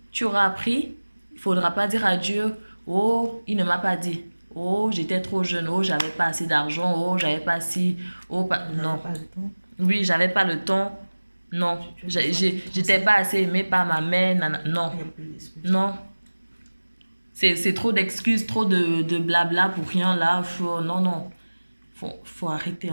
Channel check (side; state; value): both; inverted; correlation -1.00